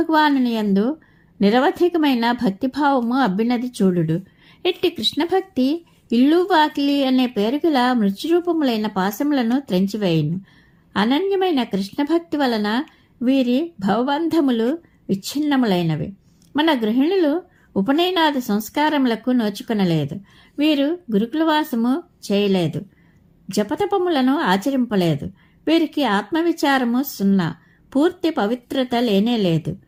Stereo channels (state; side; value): identical; both; correlation 1.00